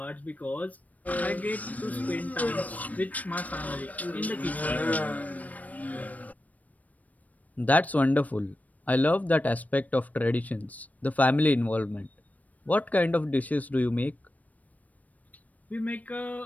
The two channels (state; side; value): late; right; 0.073 ms